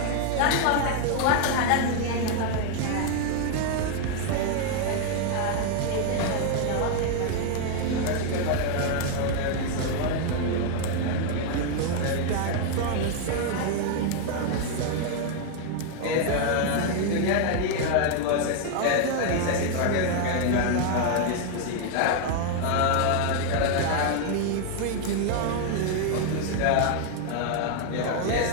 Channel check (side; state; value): both; different; correlation 0.00